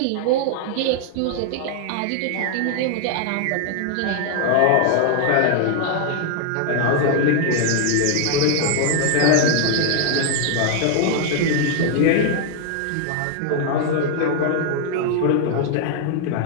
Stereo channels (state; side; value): different; both; correlation 0.00